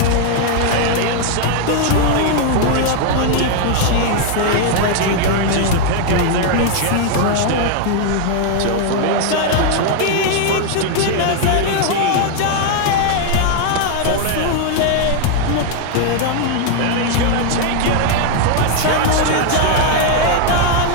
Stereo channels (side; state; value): both; different; correlation 0.00